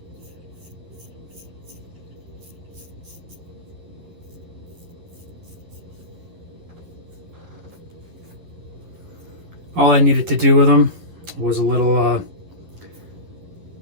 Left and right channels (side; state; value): left; late; 11 ms